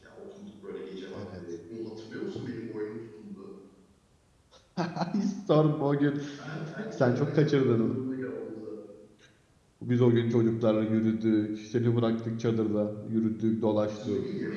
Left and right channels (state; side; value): identical; both; correlation 1.00